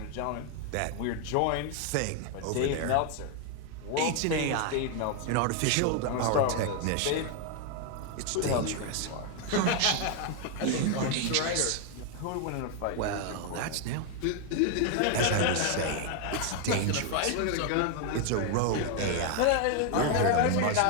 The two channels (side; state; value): both; different; correlation 0.01